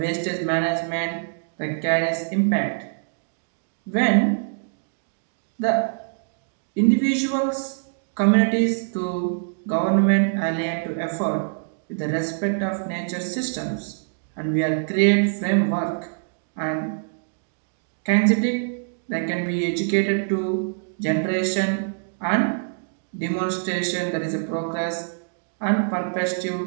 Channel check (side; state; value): left; silent; digital silence